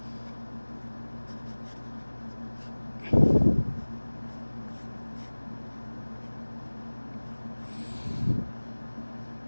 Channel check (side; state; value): both; inverted; correlation -1.00